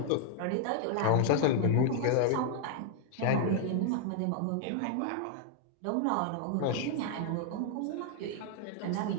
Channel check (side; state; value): both; different; correlation 0.00